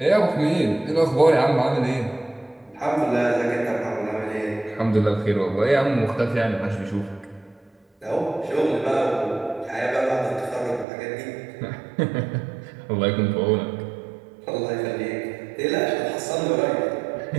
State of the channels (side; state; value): left; drops out; at 10.9 s